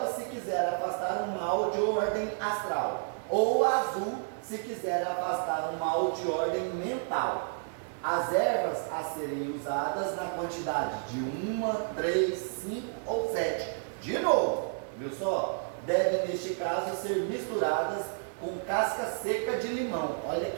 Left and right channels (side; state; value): left; silent; digital silence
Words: se quiser afastar um mal de ordem astral, ou azul, se quiser afastar um mal de ordem mental. As ervas a serem usadas na quantidade de 1, 3, 5 ou 7. De novo, viu só? Devem, neste caso, ser misturadas com casca seca de limão. Olha